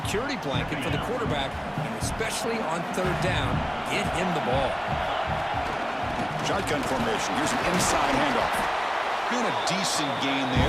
blanket for the quarterback, and especially on 3rd down, get him the ball. Shotgun formation. Here's an inside handoff. Been a decent gain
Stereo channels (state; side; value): identical; both; correlation 1.00